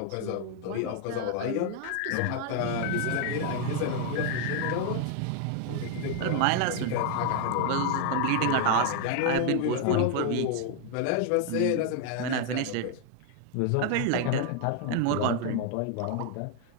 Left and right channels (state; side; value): different; both; correlation 0.00